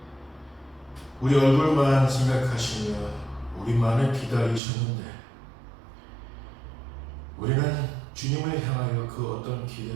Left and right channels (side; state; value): left; drops out; at 4.6 s